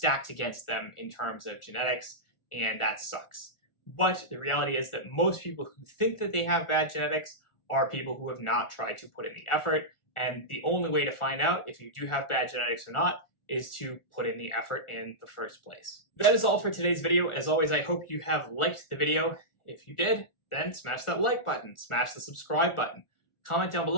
against them in terms of genetics, and that sucks. But the reality is that most people who think that they have bad genetics are people who have not tried to put in the effort. And the only way to find out if you do have bad genetics or not is to put in the effort in the first place. That is all for today's video. As always, I hope you have liked the video. If you did, then smash that like button, smash the subscribe button. Comment down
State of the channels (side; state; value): right; late; 1.4 ms